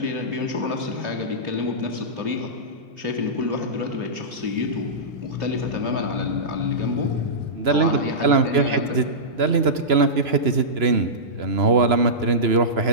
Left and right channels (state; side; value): late; left; 2.9 ms